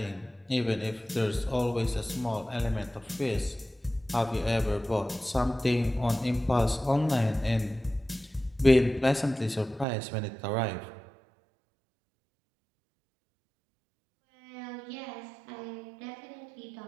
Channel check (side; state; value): left; drops out; at 9.9 s